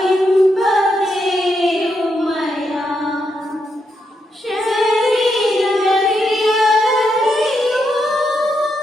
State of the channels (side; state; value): both; normal; correlation 0.81